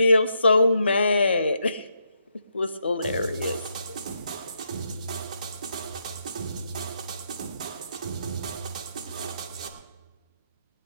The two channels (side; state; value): both; inverted; correlation -0.80